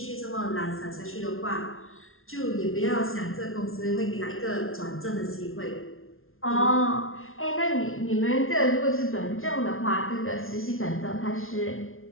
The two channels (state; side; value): late; right; 0.61 ms